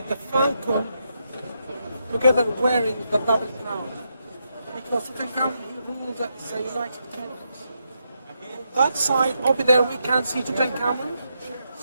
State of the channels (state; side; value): inverted; both; correlation -0.82